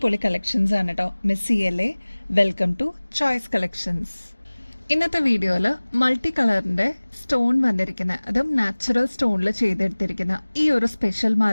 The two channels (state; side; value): inverted; both; correlation -1.00